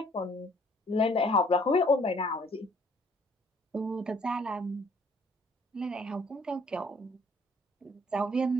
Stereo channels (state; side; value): normal; both; correlation 0.61